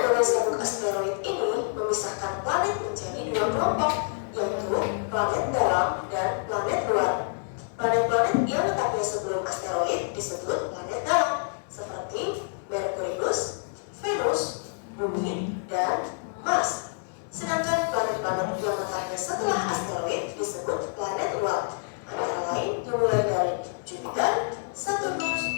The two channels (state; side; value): silent; right; digital silence